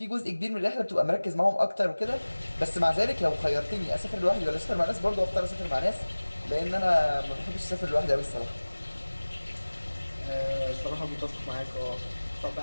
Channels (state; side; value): inverted; both; correlation -1.00